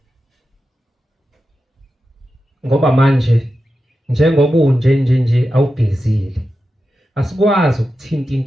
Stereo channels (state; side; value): normal; both; correlation 0.91